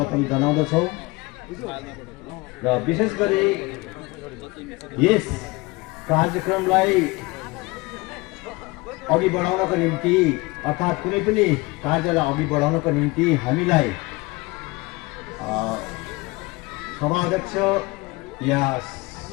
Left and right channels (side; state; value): right; quieter; 23.6 dB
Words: जनाउँदछौँ। र विशेष गरी यस कार्यक्रमलाई अघि बढाउनको निम्ति अर्थात् कुनै पनि कार्यलाई अघि बढाउनको निम्ति हामीलाई सभाध्यक्ष या